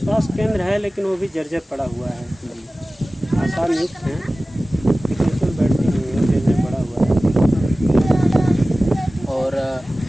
स्वास्थ्य केंद्र है लेकिन वो भी जर्जर पड़ा हुआ है। आशा नियुक्त हैं लेकिन उसमें बैठती नहीं है, जर्जर पड़ा हुआ है। और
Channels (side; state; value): both; normal; correlation 0.97